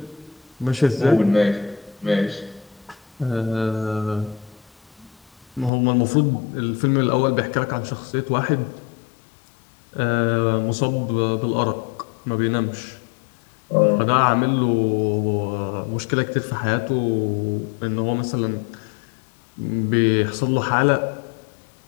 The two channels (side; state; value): right; drops out; at 5.7 s